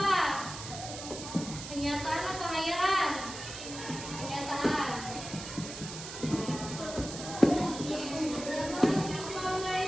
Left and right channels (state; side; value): noise; right; hiss, 10 dB below the sound